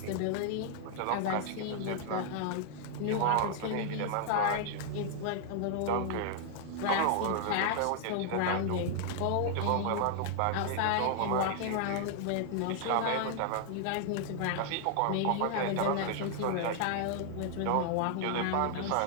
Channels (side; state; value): both; different; correlation 0.00